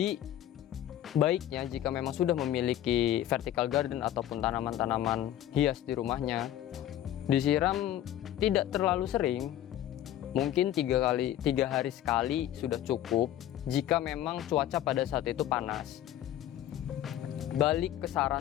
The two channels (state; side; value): quieter; right; 12.2 dB